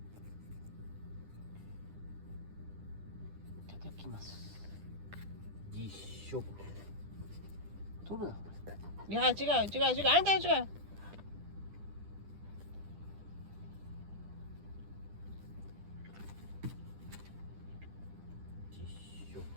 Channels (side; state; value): left; late; 10 ms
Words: いただきます。実食。取るな。いや違うあんた違う。実食。